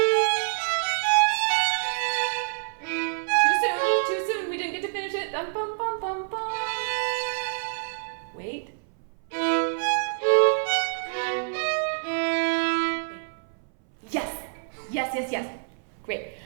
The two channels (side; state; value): left; silent; 60 dB below the other